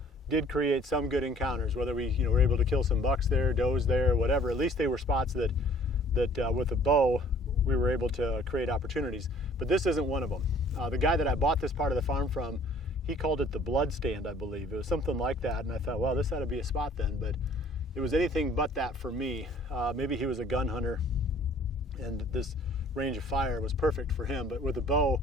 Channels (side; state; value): both; normal; correlation 0.55